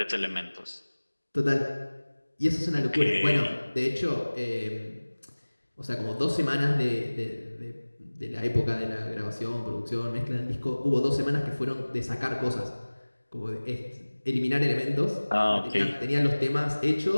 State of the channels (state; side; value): inverted; both; correlation -1.00